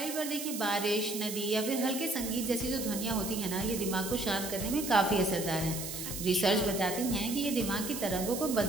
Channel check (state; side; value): noise; right; hiss, 6 dB below the sound